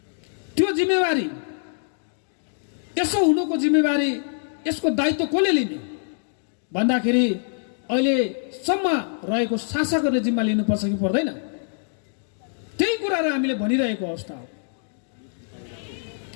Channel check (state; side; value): silent; right; digital silence